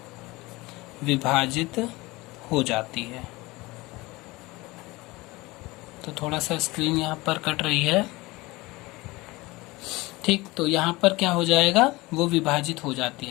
विभाजित हो जाती है। तो थोड़ा सा स्क्रीन यहाँ पर कट रही है, ठीक। तो यहाँ पर क्या हो जाएगा, वो विभाजित हो जाती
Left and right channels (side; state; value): right; quieter; 21.6 dB